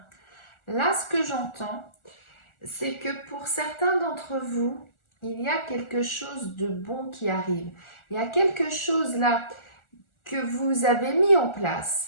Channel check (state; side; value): late; right; 1.4 ms